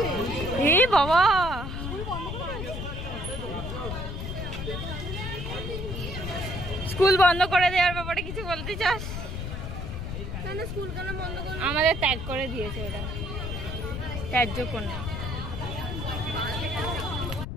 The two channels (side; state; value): left; noise; rumble, 5 dB below the sound